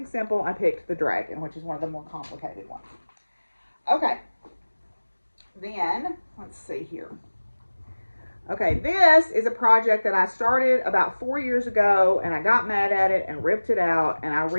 simple. I picked the dragon, which is one of the more complicated ones. Okay, then let's see here. Okay, this is a project that I started about 4 years ago, and I got mad at it and ripped it out, and I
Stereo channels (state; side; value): inverted; both; correlation -1.00